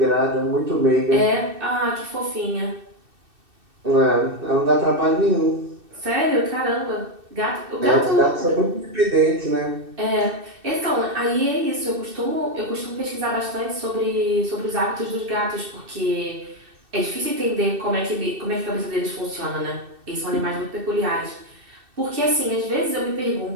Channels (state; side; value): late; left; 2.6 ms